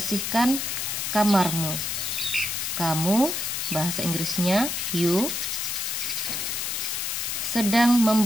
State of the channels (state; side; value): noise; left; hiss, 2 dB below the sound